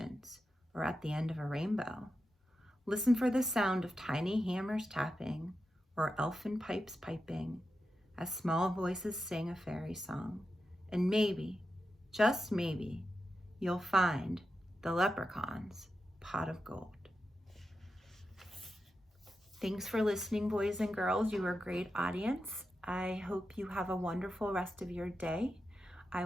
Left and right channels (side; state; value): both; normal; correlation 0.89